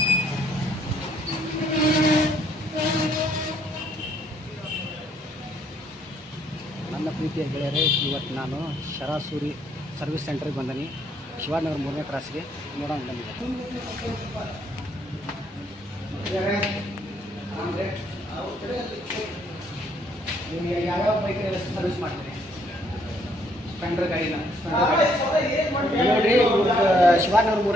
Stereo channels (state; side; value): normal; both; correlation 0.67